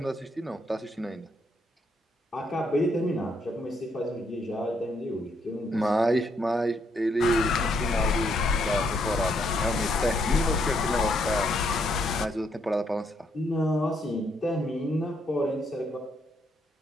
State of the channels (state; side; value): normal; both; correlation 0.73